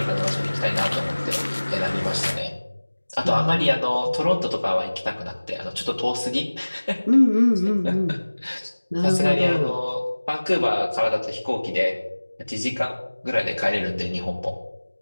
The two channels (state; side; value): inverted; both; correlation -1.00